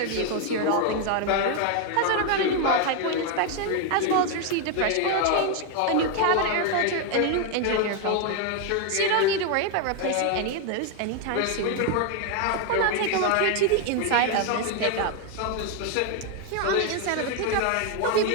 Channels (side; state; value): both; different; correlation 0.01